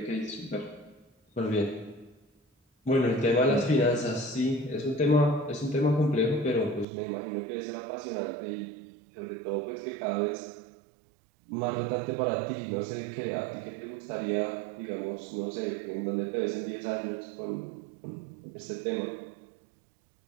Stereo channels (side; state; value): left; drops out; at 6.9 s